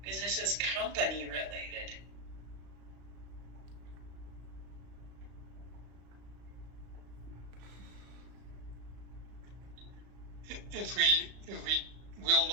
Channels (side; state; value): left; late; 35 ms